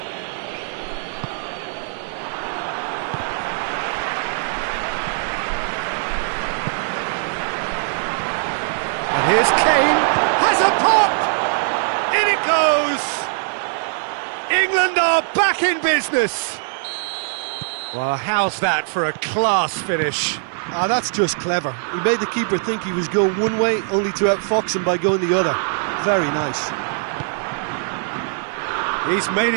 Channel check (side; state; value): left; silent; 56 dB below the other